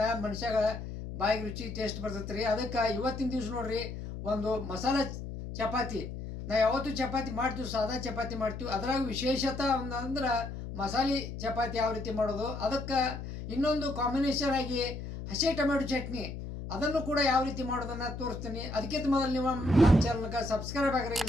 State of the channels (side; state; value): left; noise; hum, 8 dB below the sound